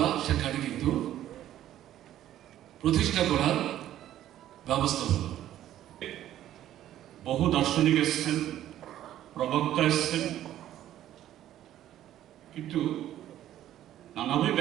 সেখানে কিন্তু প্রতিষ্ঠা করার ব্যবস্থা হল। বহু দার্শনিক এসছেন, প্রবক্তা এসছেন, কিন্তু নানাভাবে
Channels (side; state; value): left; quieter; 12.4 dB